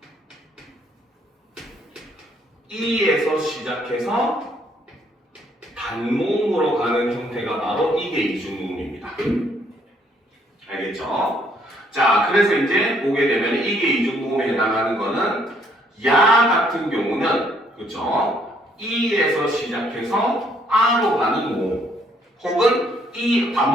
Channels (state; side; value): normal; both; correlation 0.67